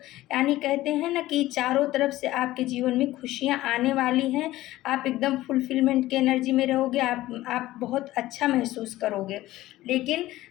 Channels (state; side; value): quieter; right; 16.3 dB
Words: यानी कहते हैं ना कि चारों तरफ से आपके जीवन में खुशियाँ आने वाली हैं। आप एकदम फुलफिलमेंट की एनर्जी में रहोगे। आप बहुत अच्छा महसूस करोगे। लेकिन